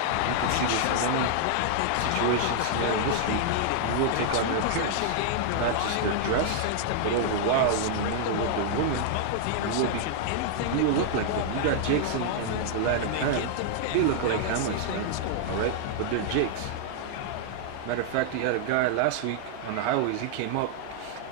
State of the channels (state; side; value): different; both; correlation -0.01